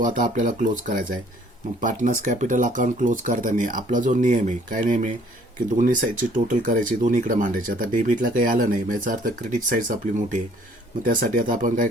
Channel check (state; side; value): normal; both; correlation 0.59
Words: आता आपल्याला क्लोज करायचा आहे. मग पार्टनर्स कॅपिटल अकाउंट क्लोज करताना आपला जो नियम आहे काय नियम आहे की दोन्ही साईडची टोटल करायची, दोन्हीकडे मांडायची. आता डेबिटला काही आलं नाही, याचा अर्थ क्रेडिट साईड आपली मोठी आहे. मग त्यासाठी आता आपण काय